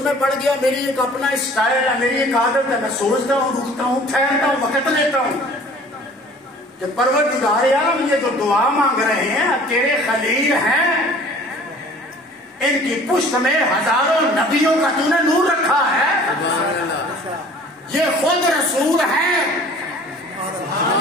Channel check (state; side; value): normal; both; correlation 0.49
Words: میں پڑ گیا، میری ایک اپنا اسٹائل ہے، میری ایک عادت ہے، میں سوچتا ہوں، رکتا ہوں، ٹھہرتا ہوں، وقت لیتا ہوں کہ پروردگار عالم یہ جو دعا مانگ رہے ہیں تیرے خلیل ہیں، ان کی پشت میں ہزاروں نبیوں کا تو نے نور رکھا ہے، یہ خود رسول ہیں،